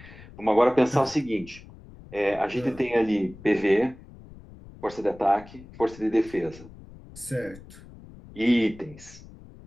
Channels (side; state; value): left; noise; rumble, 19 dB below the sound